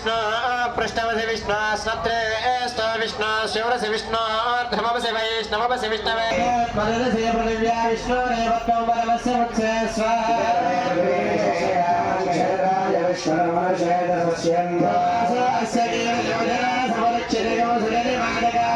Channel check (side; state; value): both; identical; correlation 1.00